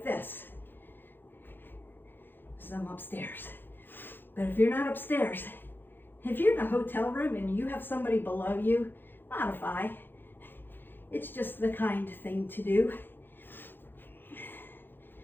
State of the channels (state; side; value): late; right; 0.098 ms